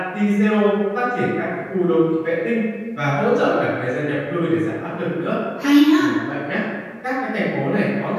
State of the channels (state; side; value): identical; both; correlation 1.00